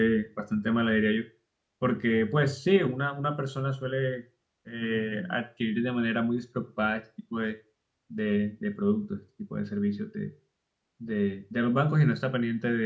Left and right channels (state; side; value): identical; both; correlation 1.00